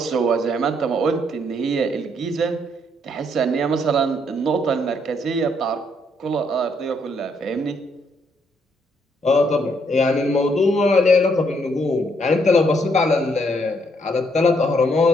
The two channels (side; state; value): both; normal; correlation 0.71